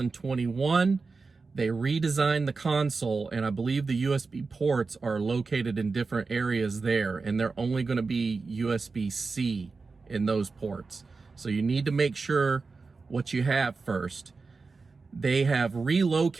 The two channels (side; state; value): left; quieter; 4.3 dB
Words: they redesigned the console, and I believe the USB ports are located in different areas there, and they're only going to be USB-C in those ports. So you need to make sure what you have first. They have